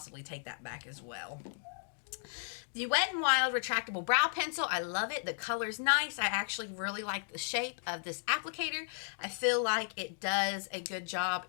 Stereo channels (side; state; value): right; silent; digital silence